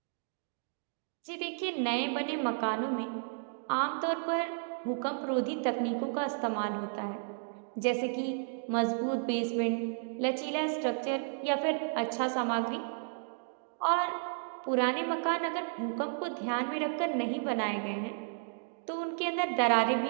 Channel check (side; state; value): left; silent; digital silence